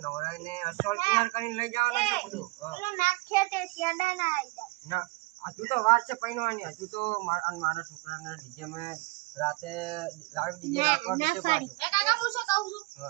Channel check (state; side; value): quieter; left; 24.4 dB